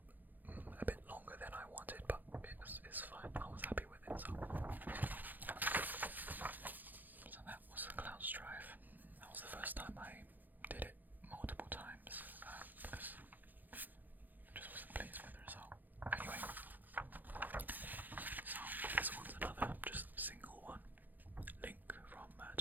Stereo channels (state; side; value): late; left; 0.085 ms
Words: longer than I wanted, but it's fine. I was happy with it. So that was the cloud strife. That was the first time I did it multiple times because I just wasn't pleased with the result. Anyway, so this one's another just single one. Link from